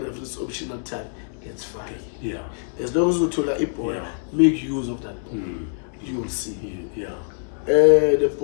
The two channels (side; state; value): right; silent; digital silence